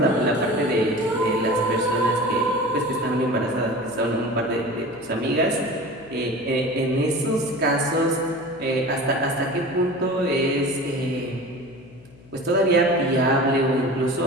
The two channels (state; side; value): noise; left; hum, 24 dB below the sound